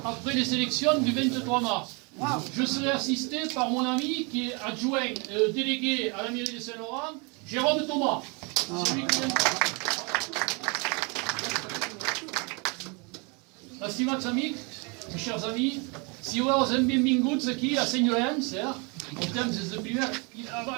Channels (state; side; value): quieter; left; 31.5 dB